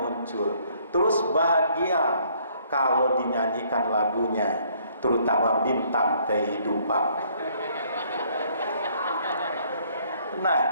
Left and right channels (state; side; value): inverted; both; correlation -0.64